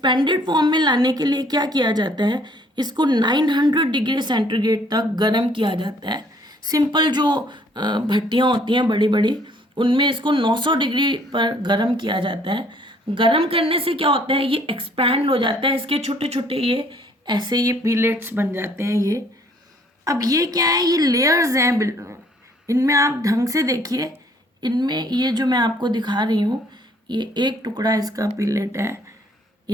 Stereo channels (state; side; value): normal; both; correlation 0.61